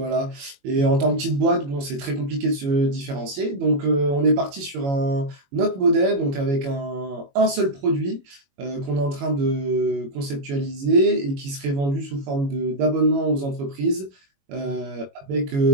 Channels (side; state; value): left; late; 21 ms